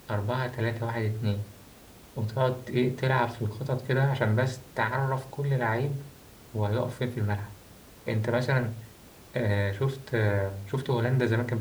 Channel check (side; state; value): both; identical; correlation 1.00